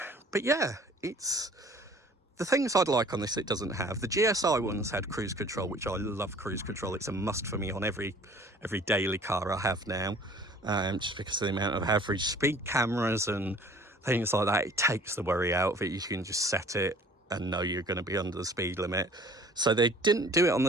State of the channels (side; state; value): both; normal; correlation 0.50